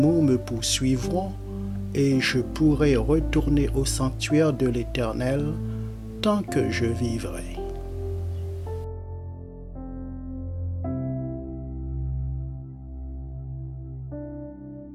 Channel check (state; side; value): identical; both; correlation 1.00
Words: me poursuivront, et je pourrai retourner au sanctuaire de l'Éternel tant que je vivrai.